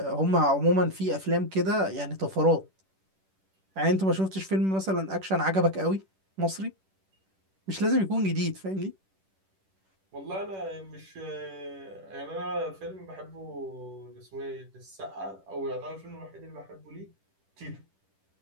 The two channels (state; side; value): late; left; 10 ms